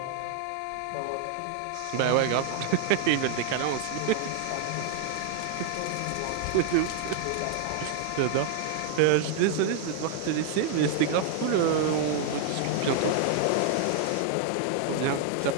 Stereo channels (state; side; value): different; both; correlation 0.00